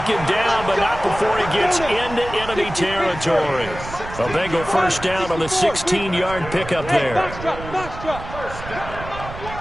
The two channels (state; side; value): noise; right; rumble, 11 dB below the sound